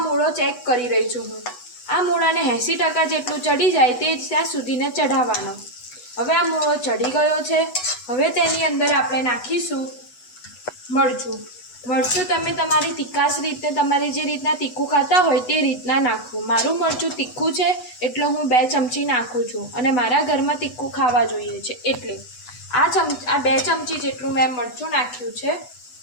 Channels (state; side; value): late; right; 8.1 ms